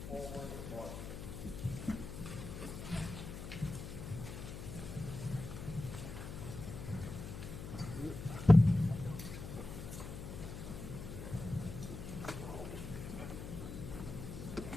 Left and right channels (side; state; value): left; noise; hum, 8 dB below the sound